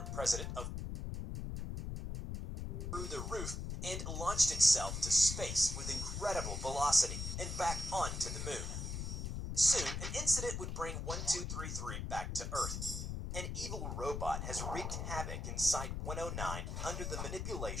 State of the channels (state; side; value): noise; left; rumble, 4 dB below the sound